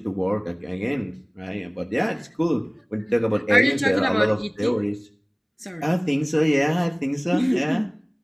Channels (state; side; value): identical; both; correlation 1.00